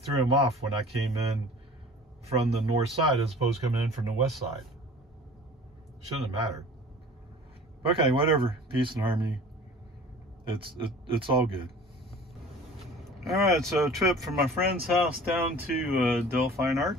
threw him off when I came in from the north side as opposed to coming in from the west side. Shouldn't have mattered. Okay, whatever. Peace and harmony. It's all good. All right, so a trip from my friend's house down to Dell Fine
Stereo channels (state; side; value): normal; both; correlation 0.44